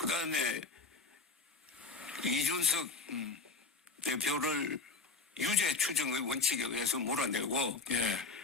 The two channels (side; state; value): right; quieter; 4.2 dB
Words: 이준석 대표를 유죄 추정의 원칙에 의해서 몰아내고 예.